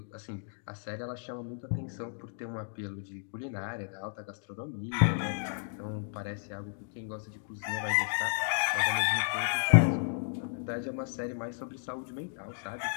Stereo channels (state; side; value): silent; right; digital silence